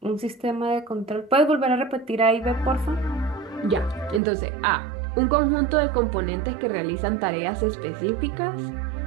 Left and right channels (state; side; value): drops out; left; at 4.2 s